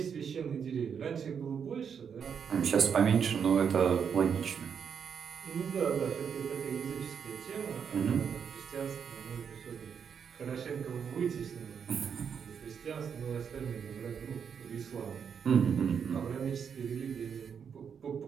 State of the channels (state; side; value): quieter; left; 7.1 dB